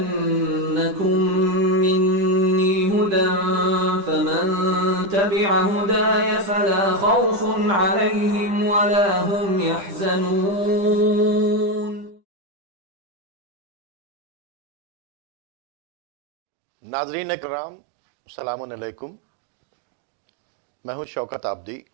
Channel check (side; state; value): left; late; 10 ms